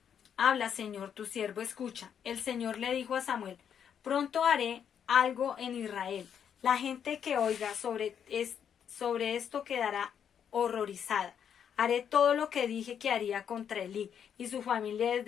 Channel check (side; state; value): right; quieter; 8.3 dB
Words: habla, Señor, tu siervo escucha. El Señor le dijo a Samuel, pronto haré algo en Israel. La gente que oiga sobre esto quedará horrorizada. Haré todo lo que dije que haría contra Elí y su familia